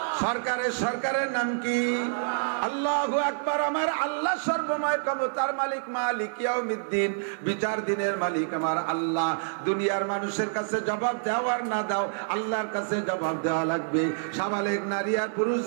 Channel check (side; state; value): left; silent; 60 dB below the other